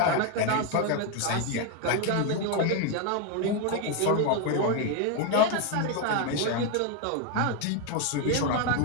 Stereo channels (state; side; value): different; both; correlation 0.01